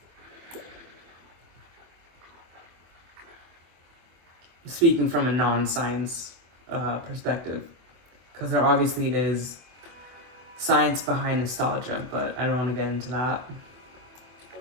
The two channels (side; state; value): left; late; 25 ms